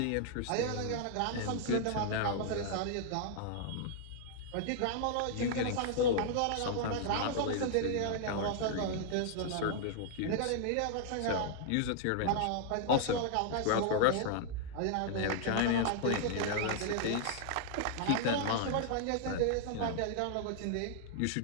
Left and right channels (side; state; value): both; different; correlation -0.01